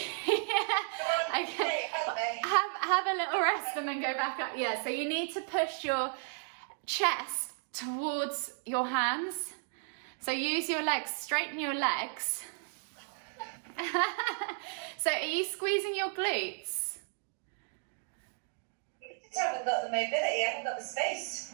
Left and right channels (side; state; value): left; silent; 55 dB below the other